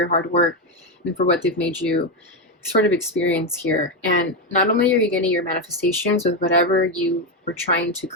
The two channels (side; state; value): both; normal; correlation 0.08